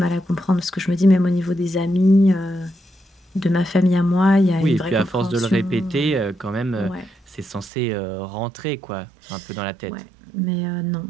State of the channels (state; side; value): drops out; left; at 7.7 s